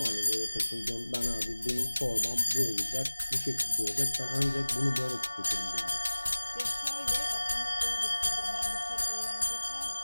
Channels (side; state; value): both; inverted; correlation -1.00